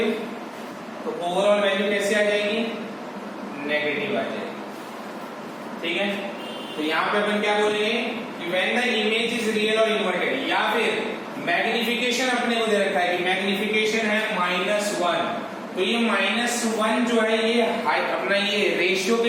तो ओवरऑल वैल्यू कैसे आ जाएगी? नेगेटिव आ जाएगी, ठीक है। तो यहाँ पे अपन क्या बोलेंगे कि when the image is real और इन्वर्टेड, या फिर मैग्निफिकेशन अपने को दे रखा है कि मैग्निफिकेशन है -1। तो ये -1 जो है ये अपना ये रेशियो के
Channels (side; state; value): both; identical; correlation 1.00